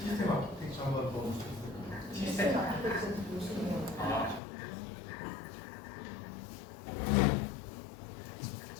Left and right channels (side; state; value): right; drops out; at 4.4 s